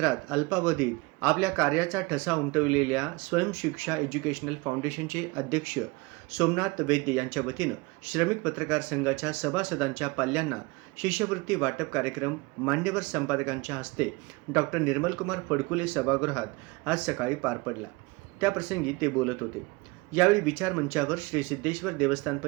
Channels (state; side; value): quieter; left; 24.7 dB